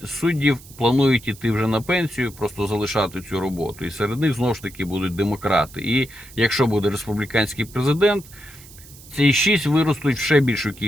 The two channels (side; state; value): right; noise; hiss, 20 dB below the sound